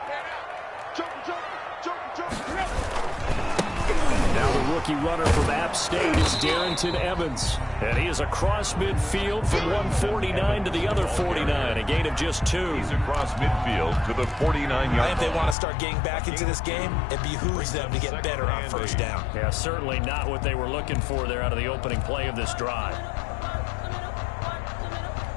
Now the rookie runner from App State is Darrington Evans. And he is across midfield from 149 to the other 49, a gain of just 2. He's across midfield to the 49-yard. If they want to start getting back into this game, it behooves them to get better on 1st down. Yeah, certainly not what they were looking for there out of the opening play of this drive.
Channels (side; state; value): right; drops out; at 15.6 s